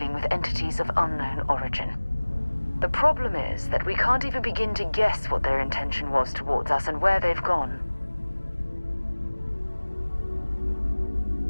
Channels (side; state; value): both; inverted; correlation -1.00